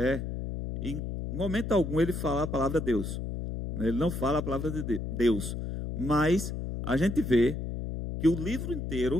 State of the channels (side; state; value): left; noise; hum, 5 dB below the sound